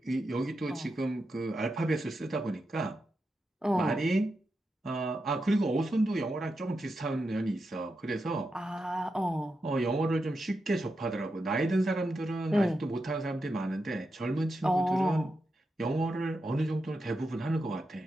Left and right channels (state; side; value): normal; both; correlation 0.87